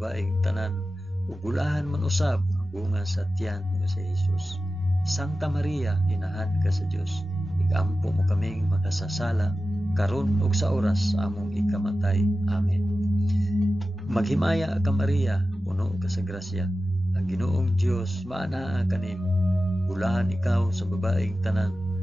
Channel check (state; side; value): normal; both; correlation 0.94